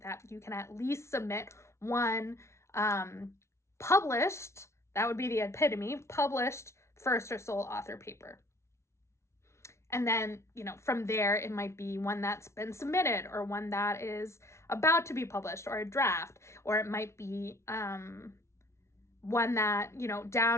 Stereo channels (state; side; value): late; right; 0.13 ms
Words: that you can at least submit one published, that would be the epitome, published first or sole author paper. And then, from there, it might be one that's been submitted, or one that is about to be published, or a draft, or it might be one that,